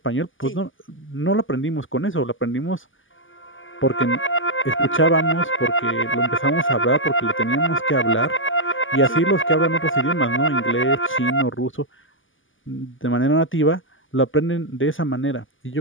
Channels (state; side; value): late; right; 0.58 ms